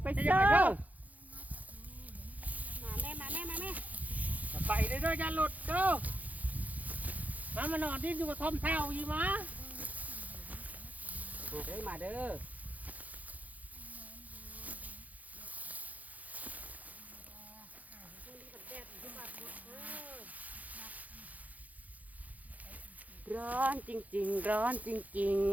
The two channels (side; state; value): left; late; 0.077 ms